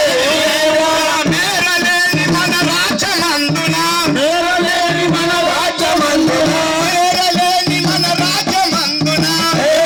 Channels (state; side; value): identical; both; correlation 1.00